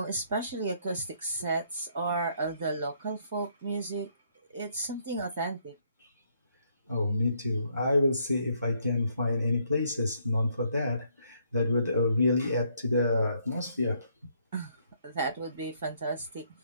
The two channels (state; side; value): inverted; both; correlation -0.70